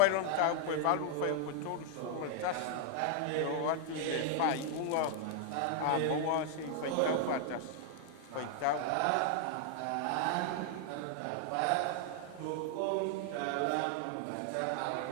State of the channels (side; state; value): both; different; correlation 0.00